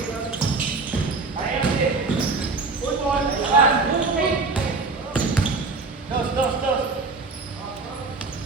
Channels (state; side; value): quieter; left; 3.9 dB